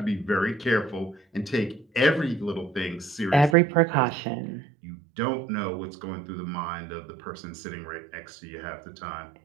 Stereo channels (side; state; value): left; drops out; at 3.6 s